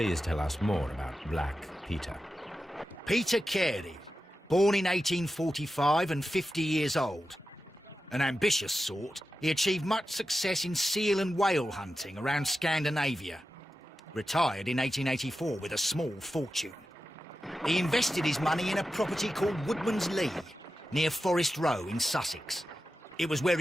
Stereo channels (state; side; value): normal; both; correlation 0.92